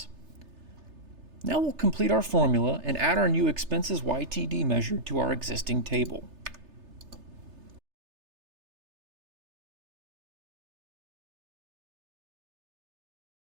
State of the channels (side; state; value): left; late; 3.3 ms